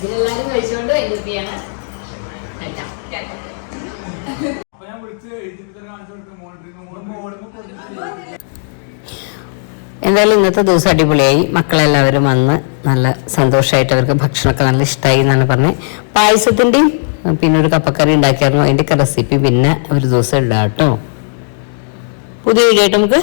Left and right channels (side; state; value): right; silent; digital silence